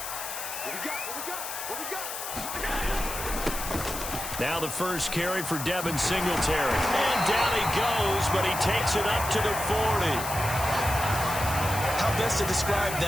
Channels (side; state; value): left; noise; hiss, 7 dB below the sound